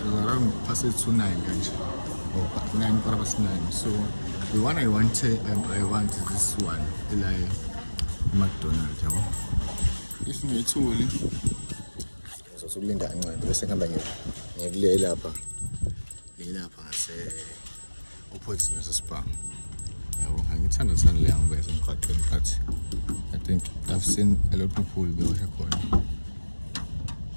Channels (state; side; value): inverted; both; correlation -1.00